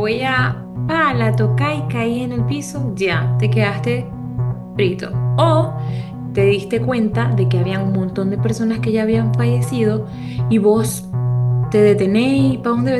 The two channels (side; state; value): both; identical; correlation 1.00